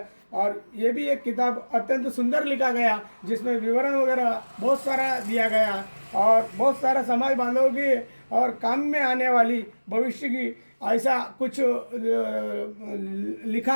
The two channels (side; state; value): both; inverted; correlation -1.00